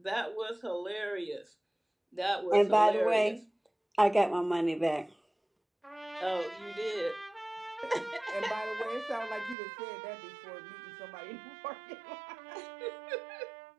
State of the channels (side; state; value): left; drops out; at 9.6 s